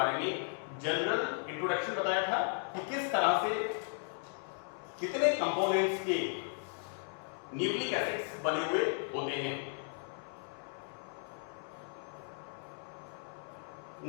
में जनरल इंट्रोडक्शन बताया था कि किस तरह से कितने कंपोनेंट्स के न्यूक्लिक एसिड्स बने हुए होते हैं.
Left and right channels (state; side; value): silent; right; 54 dB below the other